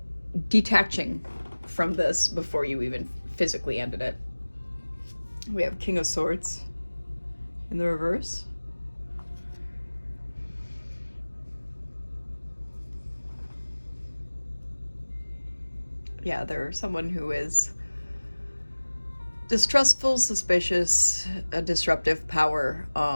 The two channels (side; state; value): both; inverted; correlation -1.00